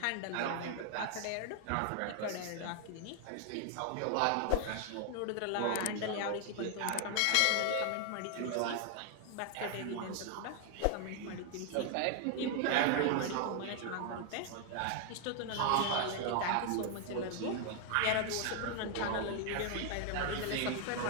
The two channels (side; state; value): both; different; correlation 0.00